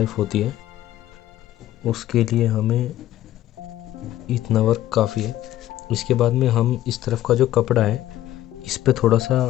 होती है उसके लिए हमें इतना वर्क काफ़ी है। इसके बाद में हम इस तरफ का जो कपड़ा है इस पे थोड़ा सा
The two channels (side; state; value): right; quieter; 13.6 dB